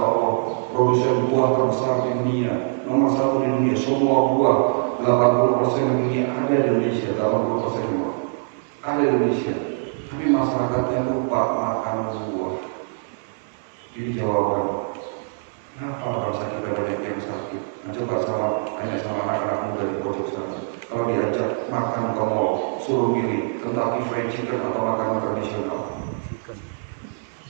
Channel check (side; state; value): left; silent; digital silence